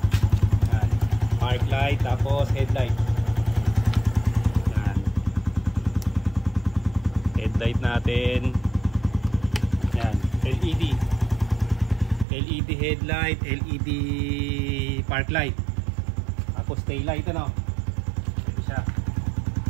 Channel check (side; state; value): left; drops out; at 12.2 s